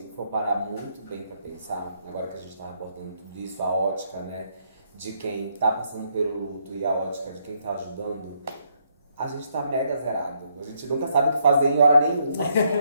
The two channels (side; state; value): both; inverted; correlation -0.74